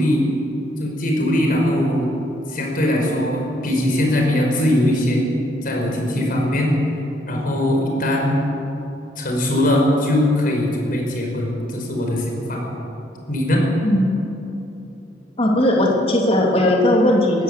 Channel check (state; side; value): normal; both; correlation 0.67